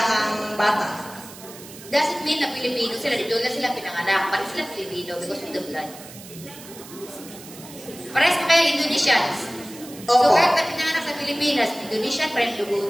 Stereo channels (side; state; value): right; noise; hiss, 17 dB below the sound